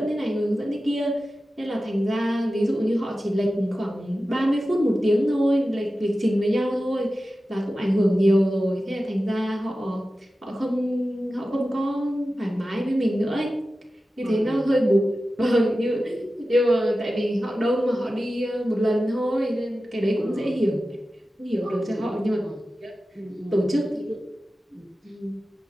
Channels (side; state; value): both; normal; correlation 0.94